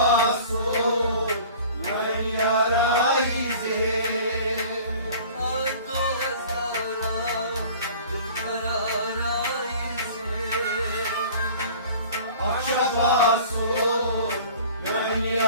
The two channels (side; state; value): both; inverted; correlation -0.45